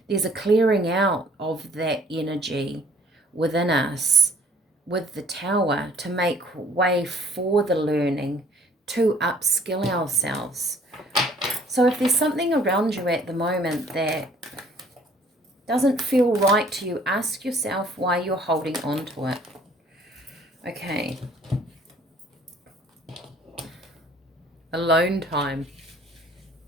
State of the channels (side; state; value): both; normal; correlation 0.56